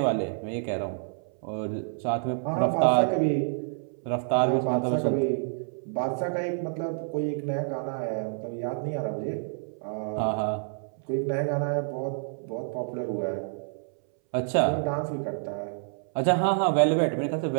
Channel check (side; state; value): left; silent; 59 dB below the other